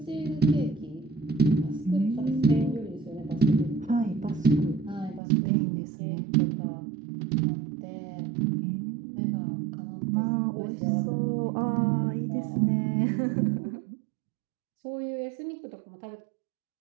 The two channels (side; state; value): left; drops out; at 5.2 s